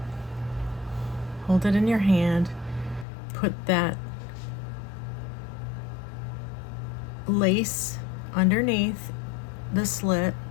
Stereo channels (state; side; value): drops out; right; at 3.1 s